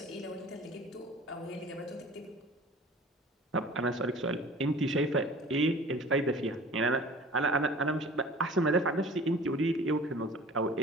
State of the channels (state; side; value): normal; both; correlation 0.44